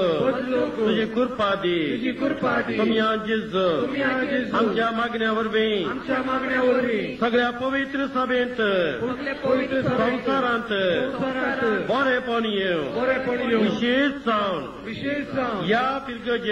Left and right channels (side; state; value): both; identical; correlation 1.00